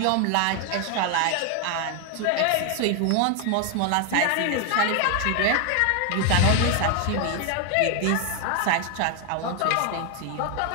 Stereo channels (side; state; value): both; different; correlation 0.01